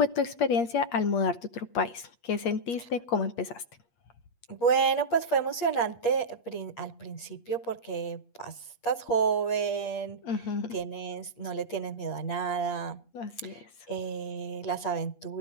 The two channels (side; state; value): right; late; 8.5 ms